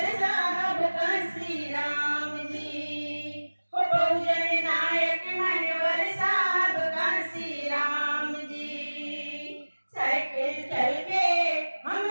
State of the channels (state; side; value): inverted; both; correlation -1.00